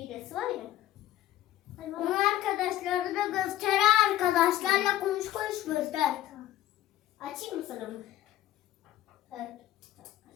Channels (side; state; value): right; quieter; 13.9 dB